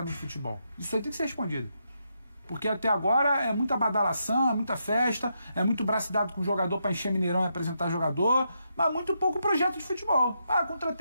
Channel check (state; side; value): inverted; both; correlation -0.81